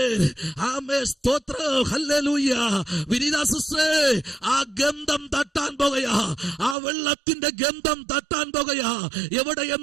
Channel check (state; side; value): drops out; left; at 6.8 s